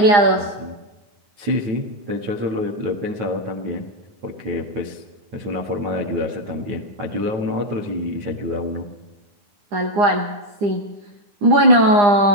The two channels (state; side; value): late; left; 9.8 ms